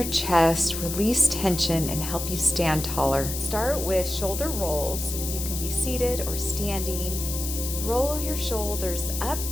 chest, release tension, and help you stand taller. Start with shoulder rolls. You can be seated or standing. Roll your shoulders up,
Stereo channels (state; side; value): noise; left; hiss, 6 dB below the sound